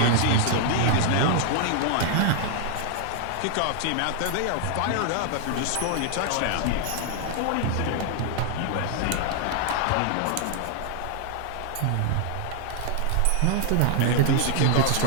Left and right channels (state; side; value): different; both; correlation 0.00